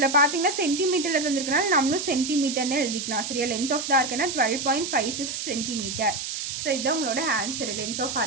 பார்த்தீங்கன்னா சென்டிமீட்டரில் தந்துருக்கனால நம்மளும் சென்டிமீட்டர்னு எழுதிக்கலாம். சரியா, லென்த் ஆஃப் த ஆர்க்குன்னா 12.56 சென்டிமீட்டர். ஸோ இதுதான் உங்களோட ஆன்சர் லென்த் ஆஃப்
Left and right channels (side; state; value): right; noise; hiss, 5 dB below the sound